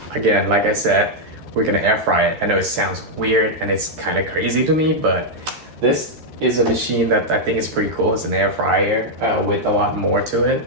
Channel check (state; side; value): late; left; 13 ms